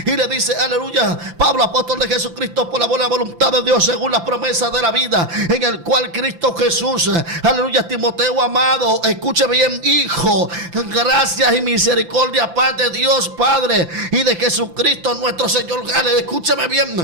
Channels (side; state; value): left; late; 5.9 ms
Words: y le dice: aleluya, Pablo, apóstol de Jesucristo, por la buena voluntad de Dios, según las promesas de la vida, en el cual Cristo Jesús, aleluya, Timoteo amado, escuche bien, hijo, gracias y misericordia, paz de Dios Padre y de Jesucristo nuestro Señor. Escúcheme bien